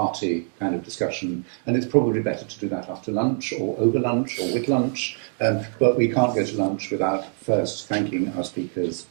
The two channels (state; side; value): silent; left; 58 dB below the other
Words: kind of discussion, and it's probably better to do that after lunch, or over lunch, or with lunch, but we can't go to lunch without first thanking our speakers